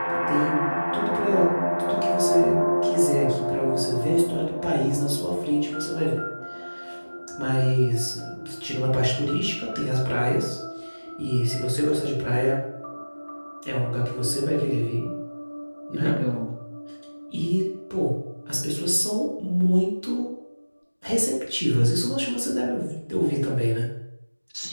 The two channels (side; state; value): both; inverted; correlation -1.00